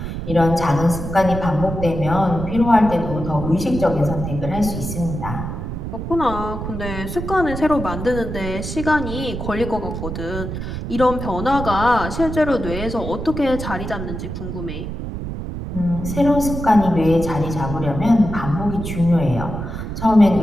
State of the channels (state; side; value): noise; right; rumble, 6 dB below the sound